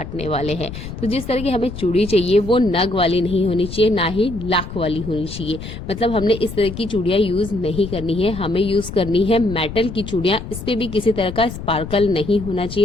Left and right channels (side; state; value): left; noise; rumble, 10 dB below the sound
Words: वाले हैं। तो जिस तरह की हमें चूड़ी चाहिए वो नग वाली नहीं होनी चाहिए, ना ही लाख वाली होनी चाहिए। मतलब हमने इस तरह की चूड़ियां यूज नहीं करनी है, हमें यूज करनी है मेटल की चूड़ियां। इस पे भी किसी तरह का स्पार्कल नहीं होना